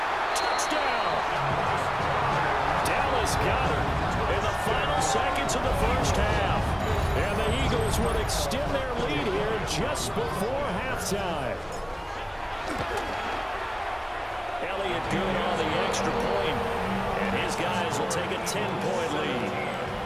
Touchdown. Dallas Goedert in the final seconds of the first half. And the Eagles will extend their lead here just before halftime. Elliott good on the extra point. will take a 10-point lead.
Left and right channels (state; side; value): identical; both; correlation 1.00